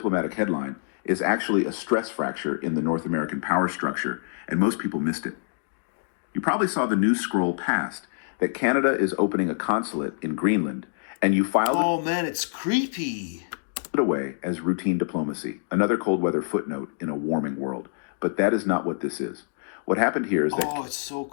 headline is actually a stress fracture in the North American power structure, and most people missed it. You probably saw the news scroll past that Canada is opening a consulate in Greenland, and you filed Oh man, it's creepy. it away as routine diplomacy, another cold weather footnote in a warming world. But that is not what this is. What happened here is that... Oh, it's so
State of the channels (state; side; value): silent; right; digital silence